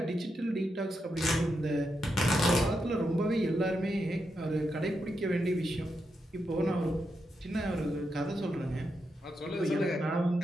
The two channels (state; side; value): normal; both; correlation 0.84